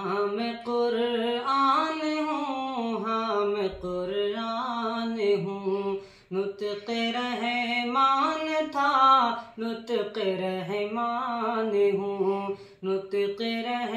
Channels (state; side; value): identical; both; correlation 1.00